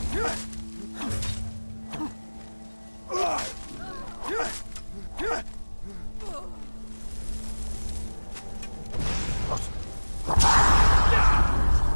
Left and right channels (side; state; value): both; inverted; correlation -1.00